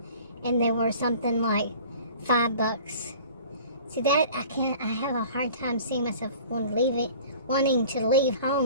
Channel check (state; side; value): inverted; both; correlation -0.45